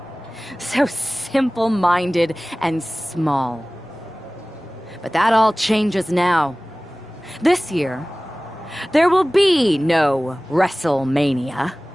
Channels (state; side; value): normal; both; correlation 0.98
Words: So simple-minded and small. But that all changes now. This year, there will be no WrestleMania.